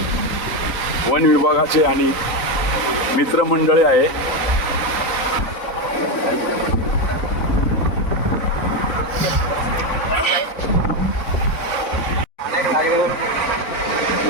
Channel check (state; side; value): late; right; 4.0 ms